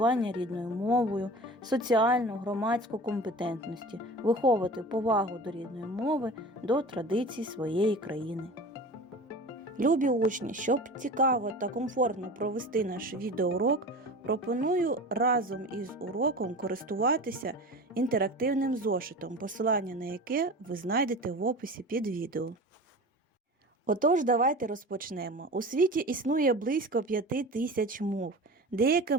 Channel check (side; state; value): both; normal; correlation 0.35